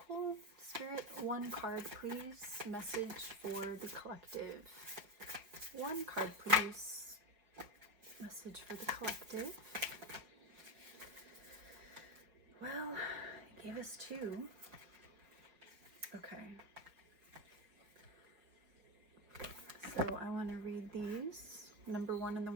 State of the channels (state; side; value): late; left; 4.7 ms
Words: Spirit, one card, please. Message for the collective. One card, please. Message for the collective. Well, it gave us two. Okay. So I want to read these. Number 1 and the